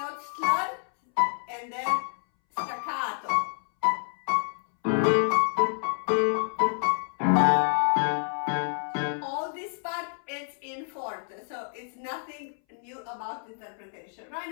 slur, and then staccato. All this part, it's in forte, so it's nothing new about interpretation. Right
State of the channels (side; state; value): right; silent; 59 dB below the other